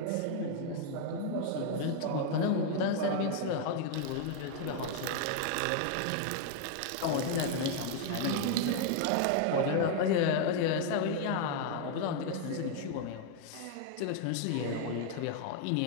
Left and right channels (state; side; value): different; both; correlation 0.00